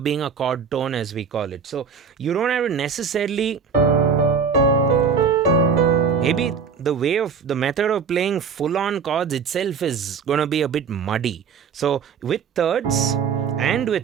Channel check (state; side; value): quieter; left; 6.1 dB